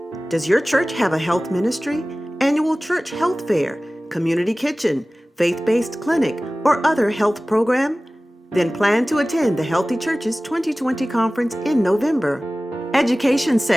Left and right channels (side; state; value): both; normal; correlation 0.97